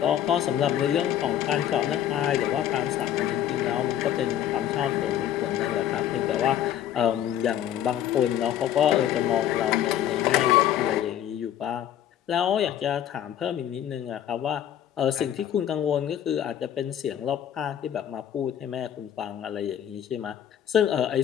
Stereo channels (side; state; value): right; quieter; 10.7 dB